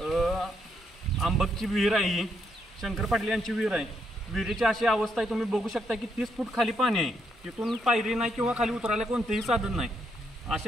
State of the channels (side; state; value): both; normal; correlation 0.76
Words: आंबकची विहीर आहे ही, शंकर पाटील यांची विहीर आहे. विहिरीची अशी अवस्था आहे, तुम्ही बघू शकता की 30 फूट खाली पाणी आहे. तिथून पायरी नाही किंवा खाली उतरायला कोणतेही साधन नाही.